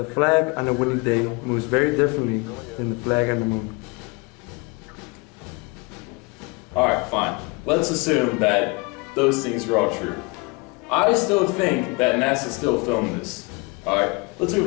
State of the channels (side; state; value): right; quieter; 28.2 dB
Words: flag on a windy day moves very differently than the flag on the moon. Alright, fine. Let's assume that those things are all true. I still think that NASA still filmed this. Alright, let's move it